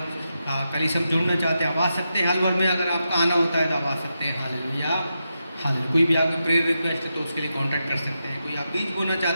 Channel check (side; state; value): both; inverted; correlation -0.87